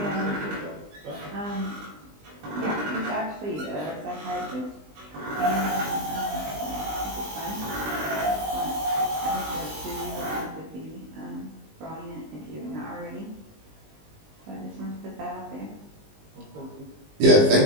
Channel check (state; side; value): late; left; 19 ms